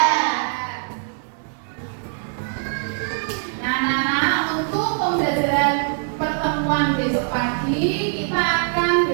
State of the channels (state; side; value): silent; left; 61 dB below the other